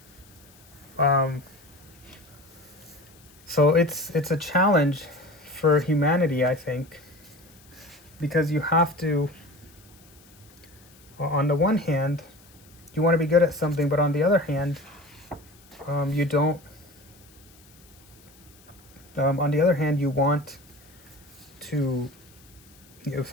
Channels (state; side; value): noise; left; hiss, 26 dB below the sound